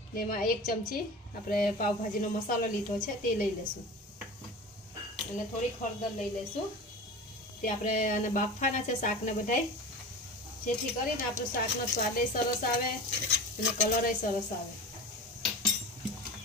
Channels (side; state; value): both; normal; correlation 0.33